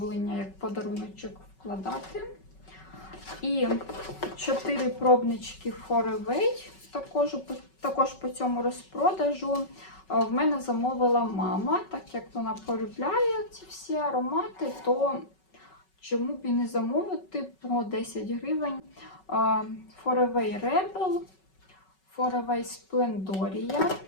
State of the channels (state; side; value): late; right; 5.3 ms